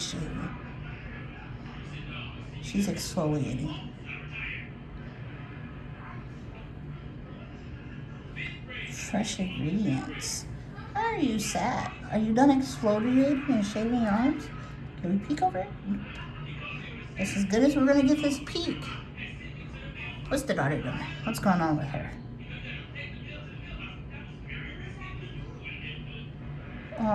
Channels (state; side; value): identical; both; correlation 1.00